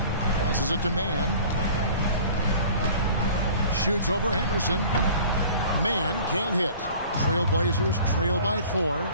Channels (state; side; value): inverted; both; correlation -0.46